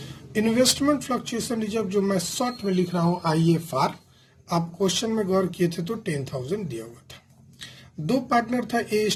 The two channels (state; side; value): identical; both; correlation 1.00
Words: इन्वेस्टमेंट फ्लक्चुएशन रिजर्व जो मैं शॉर्ट में लिख रहा हूं IFR, आप क्वेश्चन में गौर किए थे तो 10,000 दिया हुआ था। 2 पार्टनर था